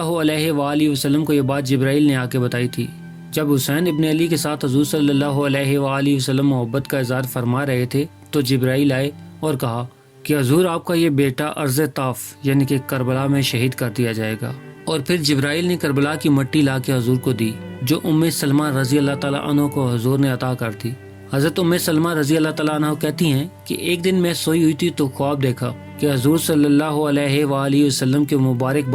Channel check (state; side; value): identical; both; correlation 1.00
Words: علیہ وآلہ وسلم کو یہ بات جبرائیل نے آ کے بتائی تھی۔ جب حسین ابن علی کے ساتھ حضور صلی اللہ علیہ وآلہ وسلم محبت کا اظہار فرما رہے تھے تو جبرائیل آئے اور کہا کہ حضور آپ کا یہ بیٹا ارض طاف یعنی کہ کربلا میں شہید کر دیا جائے گا، اور پھر جبرائیل نے کربلا کی مٹی لا کے حضور کو دی جو سلمہ رضی اللہ تعالیٰ عنہ کو حضور نے عطا کر دی۔ حضرت سلمہ رضی اللہ تعالیٰ عنہ کہتی ہیں کہ ایک دن میں سوئی ہوئی تھی تو خواب دیکھا کہ حضور صلی اللہ علیہ وآلہ وسلم کے مبارک